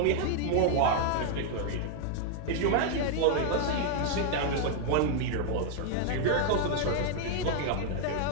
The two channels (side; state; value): both; different; correlation 0.00